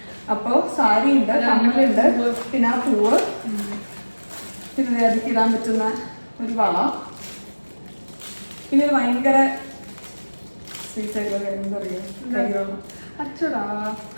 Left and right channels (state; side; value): inverted; both; correlation -1.00